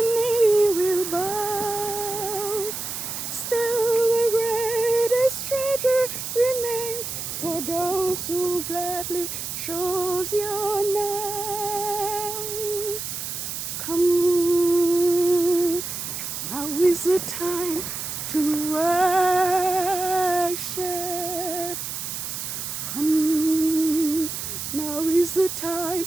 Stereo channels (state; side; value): noise; right; hiss, 6 dB below the sound